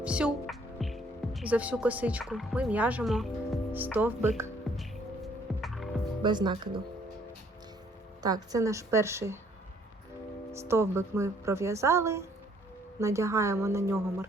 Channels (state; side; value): normal; both; correlation 0.63